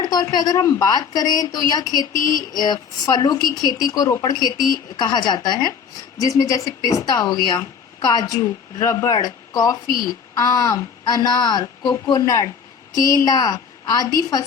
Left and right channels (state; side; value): quieter; right; 6.6 dB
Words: तौर पे अगर हम बात करें तो यह खेती फलों की खेती को रोपड़ खेती कहा जाता है, जिसमें जैसे पिस्ता हो गया, काजू, रबड़, कॉफी, आम, अनार, कोकोनट, केला आदि